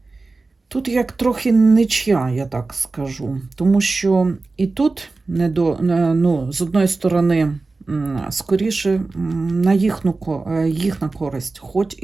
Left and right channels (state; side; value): quieter; left; 3.6 dB